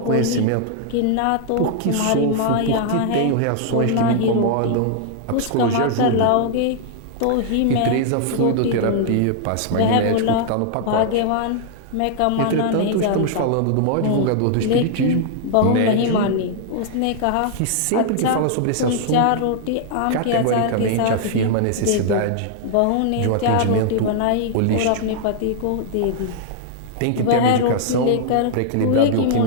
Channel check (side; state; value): both; different; correlation 0.00